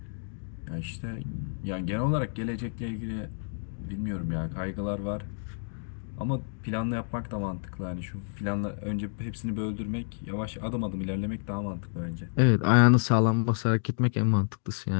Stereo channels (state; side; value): silent; right; digital silence